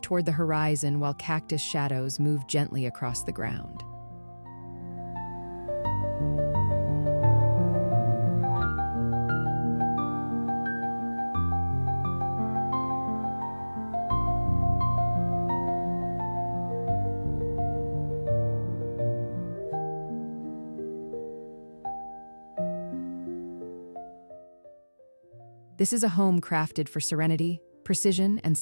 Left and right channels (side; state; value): both; inverted; correlation -1.00